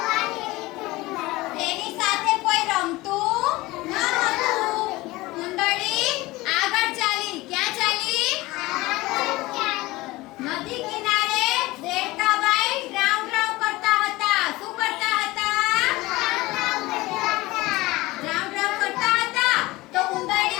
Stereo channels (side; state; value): right; quieter; 20.0 dB